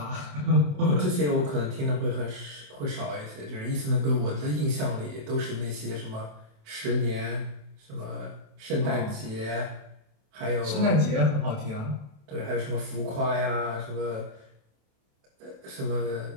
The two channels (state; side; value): late; left; 27 ms